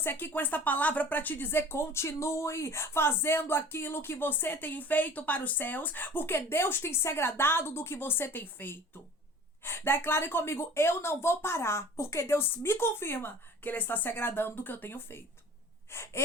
aqui com esta palavra para te dizer: continue fazendo aquilo que você tem feito para os céus, porque Deus tem se agradado do que você tem feito. Declare comigo: eu não vou parar, porque Deus me confirma que Ele está se agradando do que eu tenho feito.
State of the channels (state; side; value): normal; both; correlation 0.44